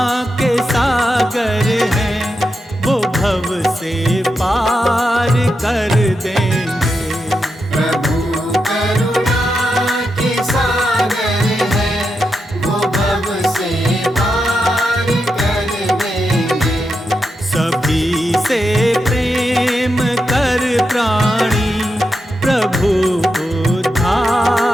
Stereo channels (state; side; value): normal; both; correlation 0.86